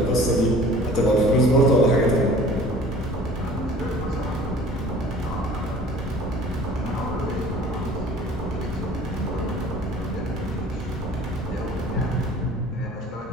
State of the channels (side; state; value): both; normal; correlation 0.48